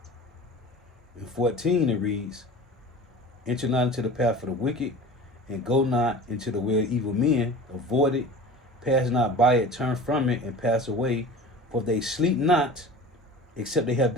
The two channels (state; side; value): normal; both; correlation 0.37